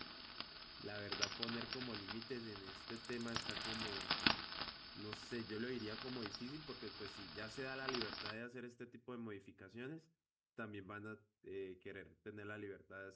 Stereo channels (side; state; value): both; identical; correlation 1.00